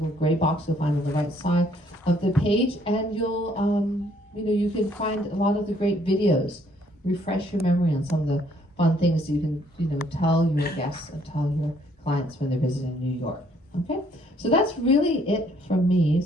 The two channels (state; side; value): normal; both; correlation 0.65